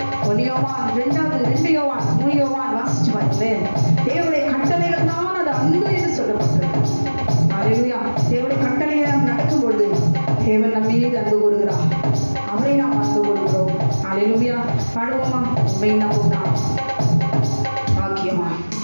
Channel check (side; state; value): both; inverted; correlation -1.00